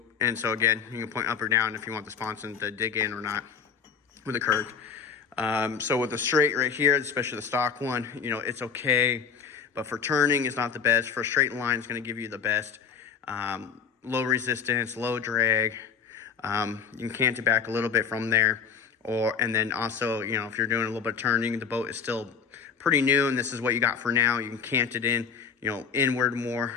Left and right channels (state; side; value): quieter; right; 6.5 dB